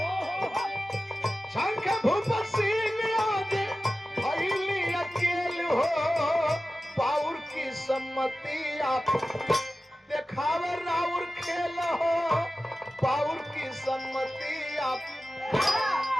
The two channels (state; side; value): normal; both; correlation 0.95